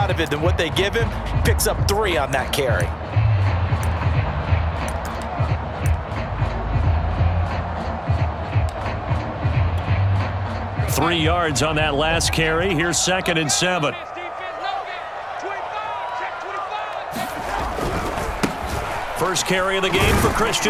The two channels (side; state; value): both; identical; correlation 1.00